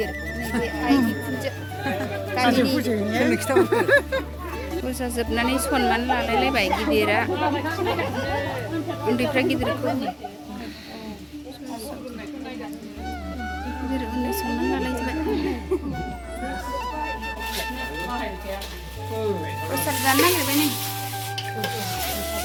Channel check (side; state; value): both; identical; correlation 1.00